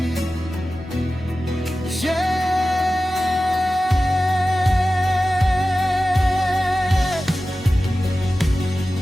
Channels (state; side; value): normal; both; correlation 0.95